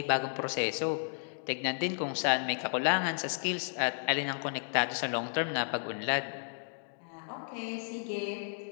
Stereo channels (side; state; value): right; silent; digital silence